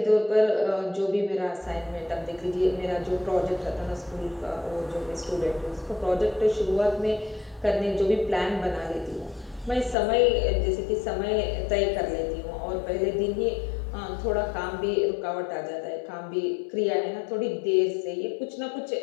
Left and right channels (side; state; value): right; drops out; at 10.0 s